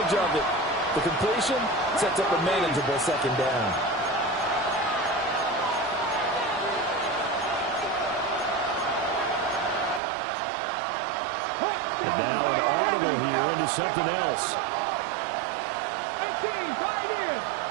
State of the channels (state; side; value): drops out; left; at 10.0 s